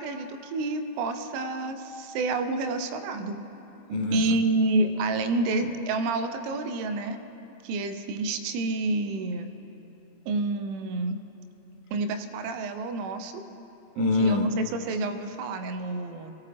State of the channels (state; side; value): late; left; 25 ms